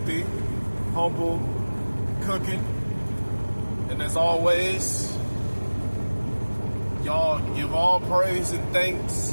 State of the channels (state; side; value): inverted; both; correlation -1.00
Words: Humble Cooking. And as always, y'all give all praise and thanks